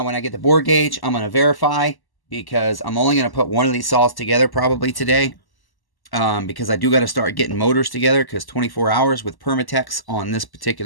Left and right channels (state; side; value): late; right; 1.1 ms